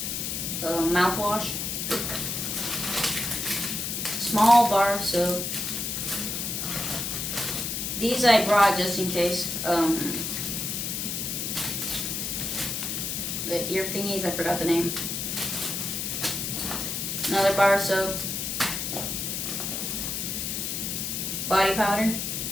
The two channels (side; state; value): left; noise; hiss, 2 dB below the sound